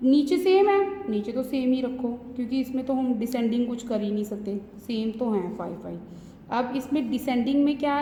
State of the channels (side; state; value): both; identical; correlation 1.00